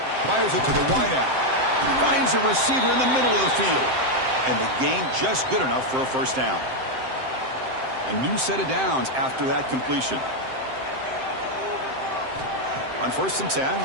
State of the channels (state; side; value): late; left; 7.7 ms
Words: Fires it to the wideout. Finds a receiver in the middle of the field. And the gain just good enough for a 1st down. A new set of downs after that completion. On 1st and